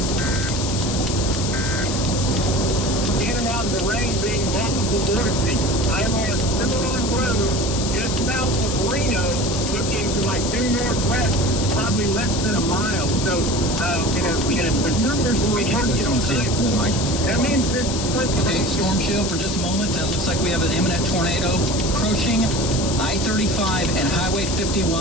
In and out of the rain being multiple vortices. I am on a Cimarron road just south of Reno, looking to my due northwest, probably less than a mile. So, the numbers will be The storm shield, Mike. That means this. Okay, storm shield for just a moment. Looks like we have an imminent tornado approaching I-35 and Highway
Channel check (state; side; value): noise; left; hiss, 5 dB below the sound